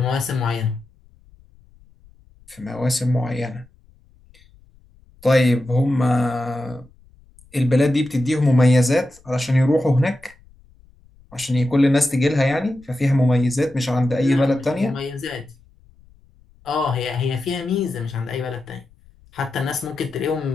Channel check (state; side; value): noise; left; rumble, 28 dB below the sound